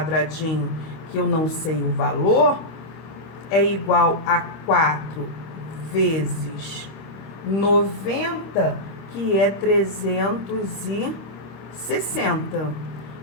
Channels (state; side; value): late; right; 26 ms